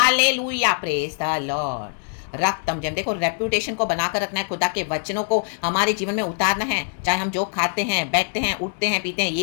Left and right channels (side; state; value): right; silent; 64 dB below the other